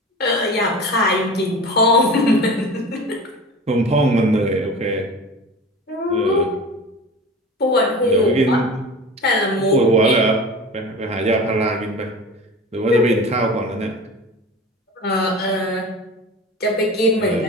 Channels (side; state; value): both; normal; correlation 0.35